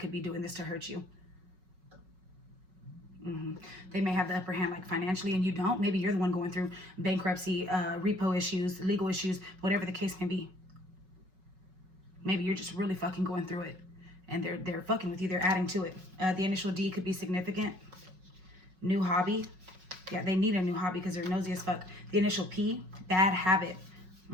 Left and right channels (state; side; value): late; left; 5.4 ms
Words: be doing this to hurt you. They may have the upper hand, like financially, and you don't. Maybe you're the one going through bankruptcy, repo issues, legal issues, whatever the case may be. Maybe you're just really fucking going through it, and they're fucking with you. They're adding to it. The initial D could be significant. New hobby. Yeah, they need a new hobby because they're nosy as fuck. The initial P, bad habit.